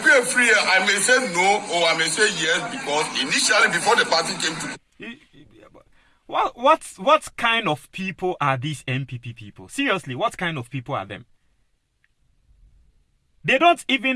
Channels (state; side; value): identical; both; correlation 1.00